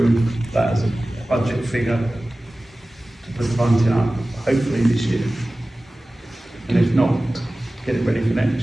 that as a budget figure to put the bunting up, hopefully this year? And if not, get it ready for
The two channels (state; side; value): normal; both; correlation 0.97